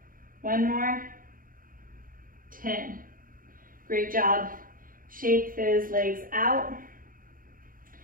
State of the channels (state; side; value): late; left; 0.41 ms